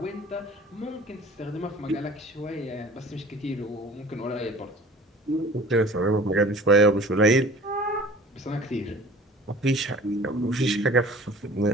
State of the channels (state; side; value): normal; both; correlation 0.45